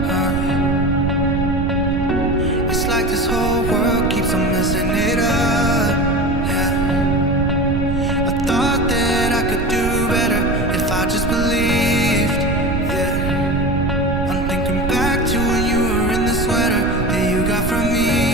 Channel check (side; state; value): right; noise; rumble, 4 dB below the sound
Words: it's like this whole world keeps on messing it up, yeah. I thought that I could do better if I just believed, yeah. I'm thinking back to when you were in the sweater that you got from